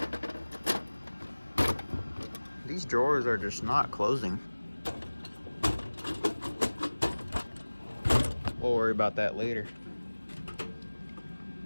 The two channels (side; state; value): both; inverted; correlation -1.00